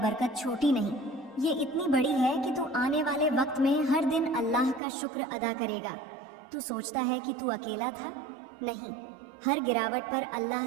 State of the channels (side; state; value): left; drops out; at 4.8 s